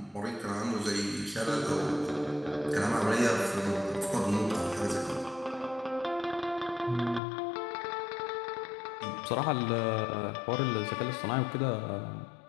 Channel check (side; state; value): right; drops out; at 7.2 s